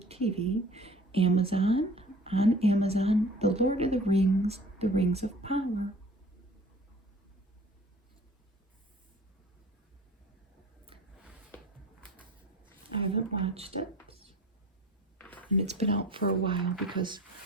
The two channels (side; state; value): both; normal; correlation 0.46